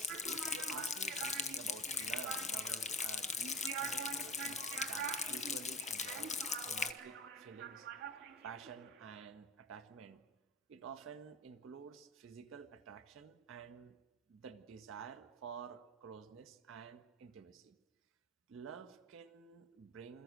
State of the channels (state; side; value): normal; both; correlation 0.33